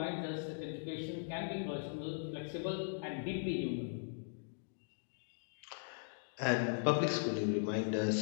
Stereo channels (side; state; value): right; silent; digital silence